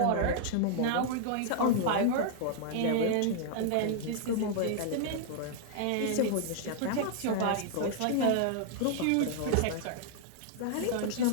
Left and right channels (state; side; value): different; both; correlation -0.01